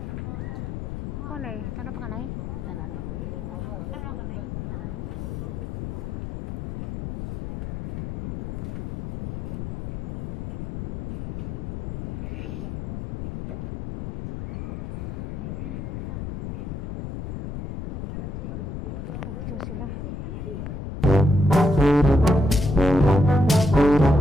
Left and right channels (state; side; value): noise; left; rumble, 7 dB below the sound